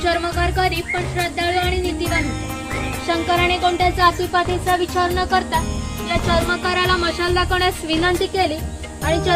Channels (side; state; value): both; identical; correlation 1.00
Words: चर्मकार गरीब पण श्रद्धाळू आणि नीतिवान होते। शंकराने कोणत्या जातीपातीचा विचार न करता या चर्मकाराला मशाल दाखवण्यास विनंती केली आणि